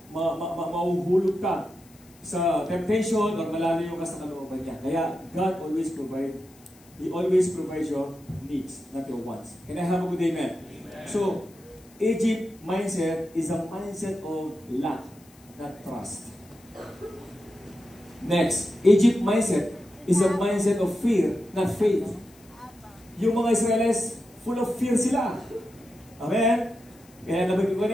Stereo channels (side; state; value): left; noise; hiss, 27 dB below the sound